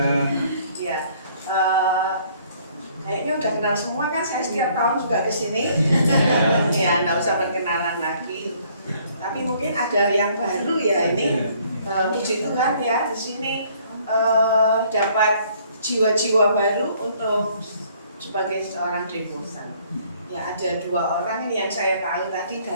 Ya, kayaknya udah kenal semua kan. Saya setiap tahun juga kesini. Ya, nggak usah perkenalan lagi. Tapi mungkin ada yang baru ya ini. Puji Tuhan ya, di sini dapat jiwa-jiwa baru untuk sebagai seorang devosan. Ya, ada 2 orang ini yang saya tahu tadi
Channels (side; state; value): both; inverted; correlation -0.61